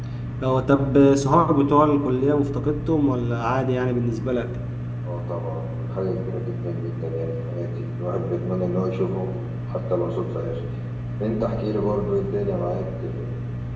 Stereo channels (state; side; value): identical; both; correlation 1.00